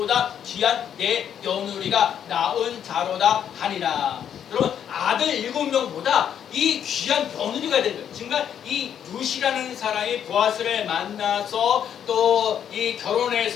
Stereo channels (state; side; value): quieter; right; 9.1 dB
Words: 귀한 내 며느리가 낳은 자로다 하니라. 여러분 아들 7명보다 이 귀한 며느리가 된 거예요. 정말 이 룻이라는 사람이 보아스를 만나서 또 이